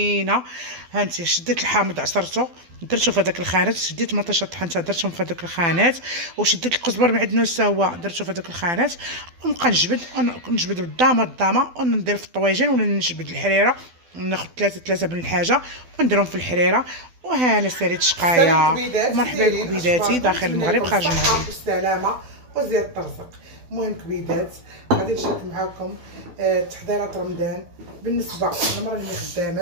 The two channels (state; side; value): late; left; 12 ms